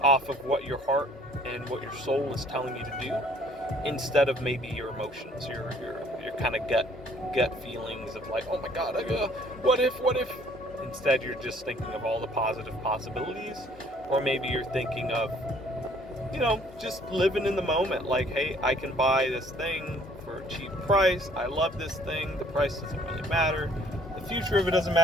off of what your heart and what your soul is telling you to do, instead of maybe your emotions, your kind of gut feelings of like, oh my god, what if? Instead, you're just thinking of all the positive possibilities, or maybe you're thinking of, just living in the moment. Like, hey, I can buy this thing for a cheap price. I love this thing. The price doesn't really matter. The future of it doesn't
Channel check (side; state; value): both; normal; correlation 0.59